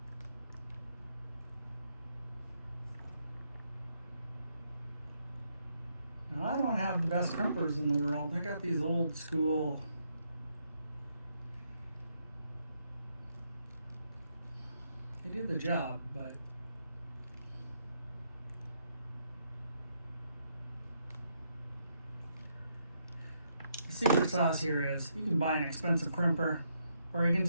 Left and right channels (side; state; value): both; inverted; correlation -0.77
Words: Now, I don't have the best crimpers in the world. I got these old school they do the job, but the secret sauce here is you can buy an expensive crimper, or you can